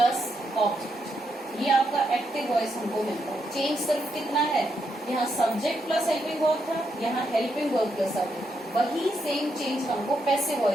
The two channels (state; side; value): normal; both; correlation 0.80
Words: object, ये आपका एक्टिव वॉइस हमको मिलता है। चेंज सिर्फ कितना है, यहाँ सब्जेक्ट प्लस हेल्पिंग वर्ब था, यहाँ हेल्पिंग वर्ब प्लस सब्जेक्ट, वही सेम चेंज हमको पैसिव